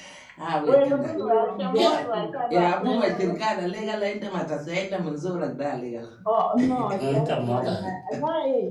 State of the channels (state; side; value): identical; both; correlation 1.00